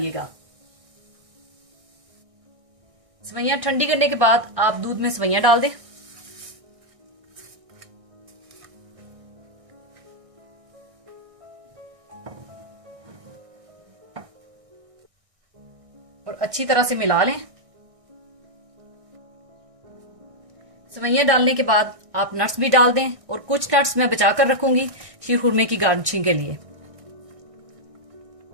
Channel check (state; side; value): late; left; 1.6 ms